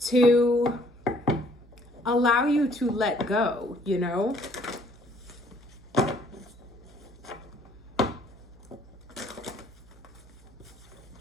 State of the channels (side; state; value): right; noise; hum, 23 dB below the sound